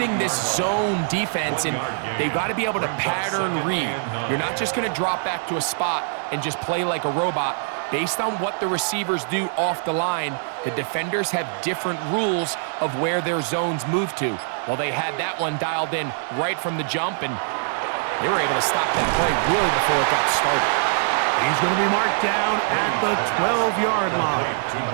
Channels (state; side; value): silent; left; 63 dB below the other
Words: this zone defense, and they've got to be able to pattern read. You're not just going to drop back to a spot and just play like a robot. Based on what the receivers do off the line, the defenders have different rules of where their zones move to. Well, they had that one dialed in right from the jump, and they were able to stop that play really before it got started. He's going to be marked down at the 12-yard line.